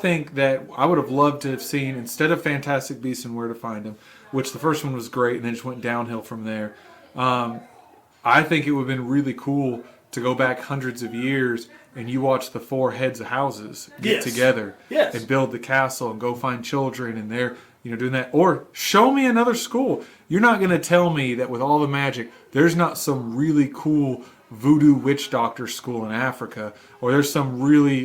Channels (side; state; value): both; identical; correlation 1.00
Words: that I would have loved to have seen, instead of Fantastic Beasts and Where to Find Them, which the first one was great and then just went downhill from there, I think it would have been really cool to go back hundreds of years and you watch the four heads of houses get Yes. together Yes. and build the castle and go find children and they're doing that. Or show me another school. You're not going to tell me that with all the magic, there's not some really cool voodoo witch doctor school in Africa, or there's some